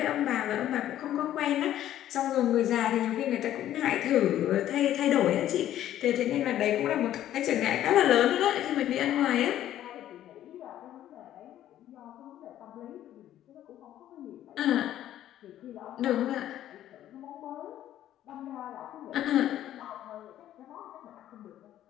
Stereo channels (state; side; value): quieter; right; 12.2 dB